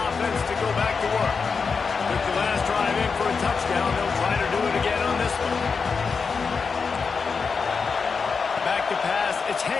to go back to work. With the last drive in for a touchdown, they'll try to do it again on this one. Back to pass, it's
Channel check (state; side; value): quieter; right; 5.2 dB